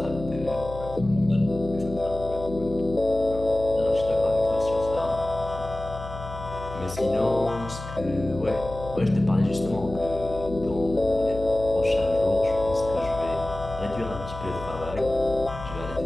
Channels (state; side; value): noise; left; hum, 12 dB below the sound